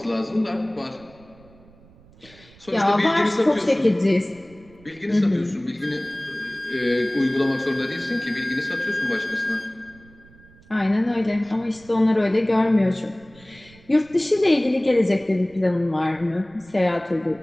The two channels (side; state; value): right; noise; rumble, 25 dB below the sound